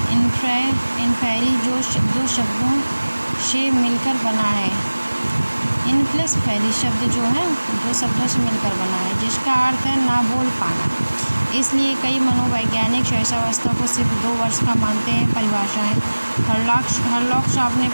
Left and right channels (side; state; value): both; inverted; correlation -1.00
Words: इन्फेरी जो दो शब्दों से मिलकर बना है। इनप्लस फेरी शब्द जो है 2 शब्दों से मिलकर बना है, जिसका अर्थ है ना बोल पाना। इसलिए कई मनोवैज्ञानिक शैशवावस्था को सिर्फ 2 वर्ष का मानते हैं। परिभाषाएं। हरलॉक साहब ने